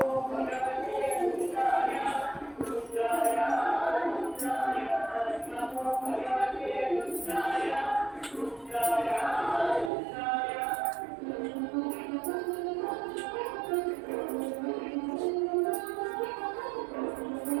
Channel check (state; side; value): drops out; left; at 9.9 s